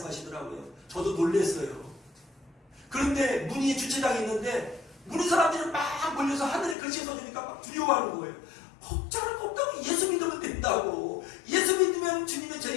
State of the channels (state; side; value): drops out; right; at 6.8 s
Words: 저도 놀랬어요. 그런데 문의 주차장에 있는데 문의 사람들이 막 몰려서 하늘에 글씨가 써지니까 막 두려워하는 거예요. 걱정할 거 없다고, 예수 믿으면 된다고. 예수 믿으면 주님의